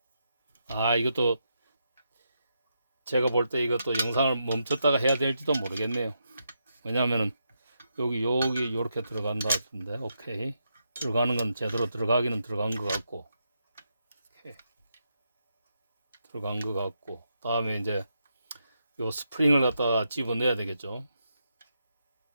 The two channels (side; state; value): both; inverted; correlation -0.83